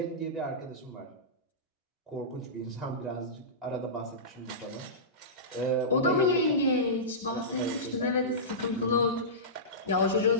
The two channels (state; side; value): normal; both; correlation -0.19